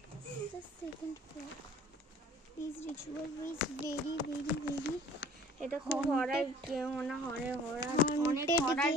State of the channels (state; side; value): normal; both; correlation 0.50